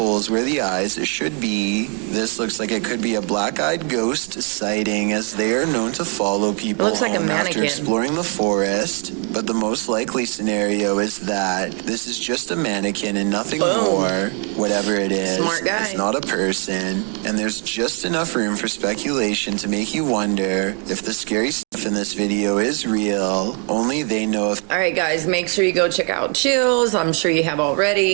where the eyes should be. This looks like it could be a black-eyed ghost sighting, as they are known to follow people It looks like a home after mannequin. exploring the forest. But the most likely scenario is that this is just a mannequin and nothing Boom. more. Whatever it is, Smart guy. it's not a person. And there's just enough room for speculation to make you wonder if the scary stuff in this video is real. Only they know if All right, guys, make sure you go check out Chills. I'm sure you have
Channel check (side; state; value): left; quieter; 38.2 dB